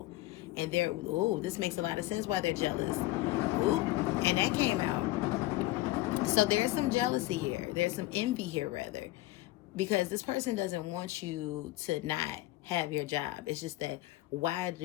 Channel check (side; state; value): right; quieter; 18.3 dB